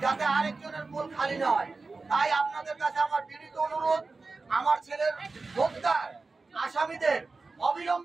যাতে আরেকজনের কোল খালি না হয়। তাই আপনাদের কাছে আমার বিনীত অনুরোধ, আমার ছেলের হত্যার আসামিদের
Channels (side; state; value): left; quieter; 3.8 dB